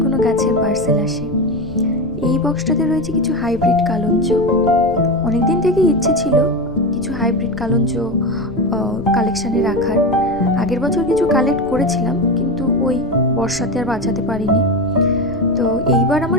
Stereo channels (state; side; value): noise; left; rumble, 16 dB below the sound